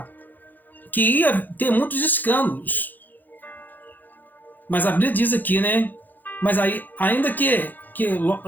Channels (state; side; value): late; right; 0.086 ms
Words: que ia ter muitos escândalos. Mas a Bíblia diz aqui, mas aí,